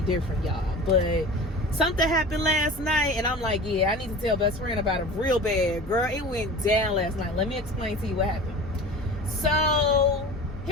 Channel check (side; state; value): both; normal; correlation 0.37